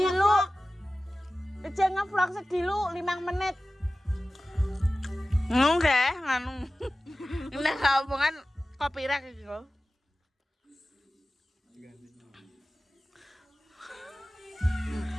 Aja ngevlog sedilu 5 menit. Nggih, nganu. Nek omongan copyright iki kok.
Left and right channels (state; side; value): normal; both; correlation 0.96